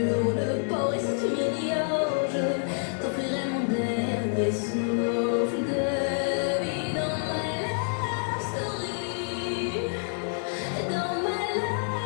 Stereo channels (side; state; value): right; silent; 60 dB below the other